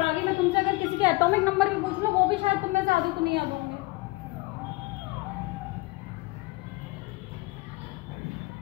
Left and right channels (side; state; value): right; quieter; 23.2 dB